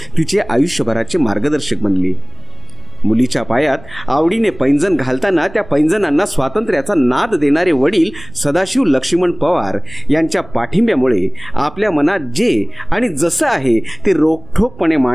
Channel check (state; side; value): noise; right; rumble, 19 dB below the sound